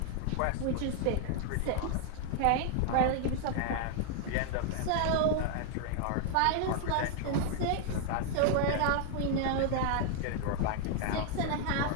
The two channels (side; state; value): both; different; correlation 0.00